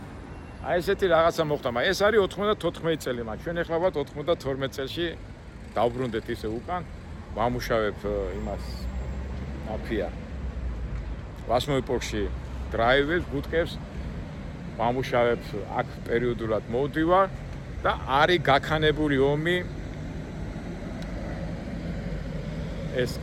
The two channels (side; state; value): both; identical; correlation 1.00